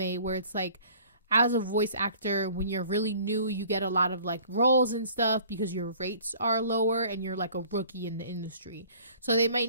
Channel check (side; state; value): both; inverted; correlation -0.51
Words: where it's like, as a voice actor, when you're really new, you get a lot of like roles and stuff because your rates are lower and you're like a rookie in the industry. So they